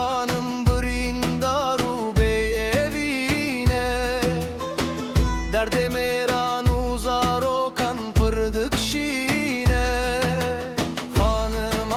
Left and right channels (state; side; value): identical; both; correlation 1.00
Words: brindaru bey evine, derde meran uzar okan pırdık şine.